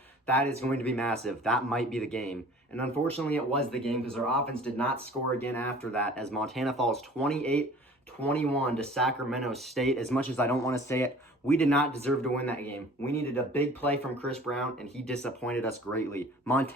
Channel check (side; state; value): both; normal; correlation 0.47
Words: that is going to be massive. That might be the game. And unfortunately, it was the game because our offense did not score again after that as Montana falls 28-21 to Sacramento State. As much as I don't want to say it, we did not deserve to win that game. We needed a big play from Chris Brown, and he disappointed us greatly.